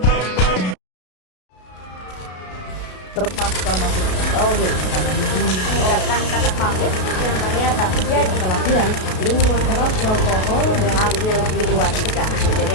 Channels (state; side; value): late; right; 33 ms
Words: Terpaksa masuk SLB karena mengucapkan kata pamit yang ternyata menjadi pelatihan minuman keras, alkohol, dan hamil di luar nikah.